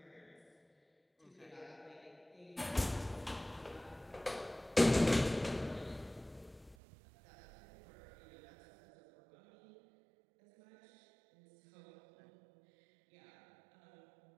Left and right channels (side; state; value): left; drops out; at 6.8 s